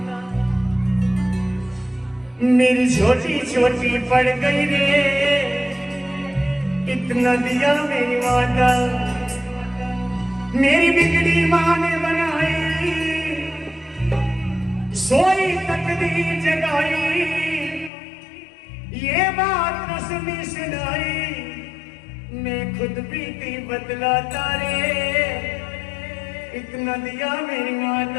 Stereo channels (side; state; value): right; drops out; at 17.9 s